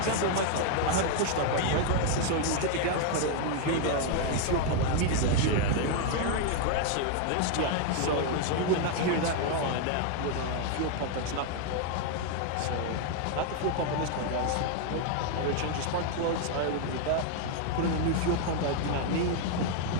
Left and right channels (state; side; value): different; both; correlation 0.00